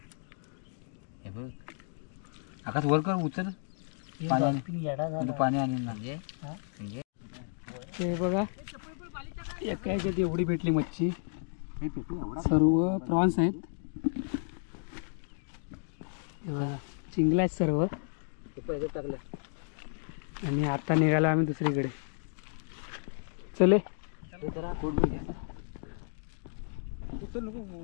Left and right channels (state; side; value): silent; right; digital silence